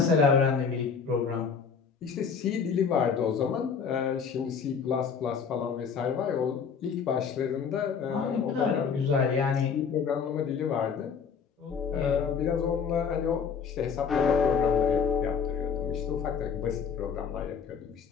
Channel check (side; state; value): right; quieter; 6.3 dB